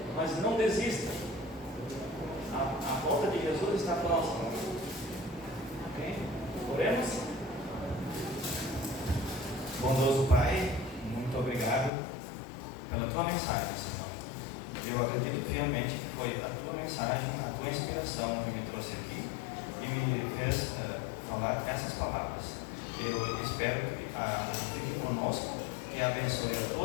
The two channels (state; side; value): drops out; right; at 11.9 s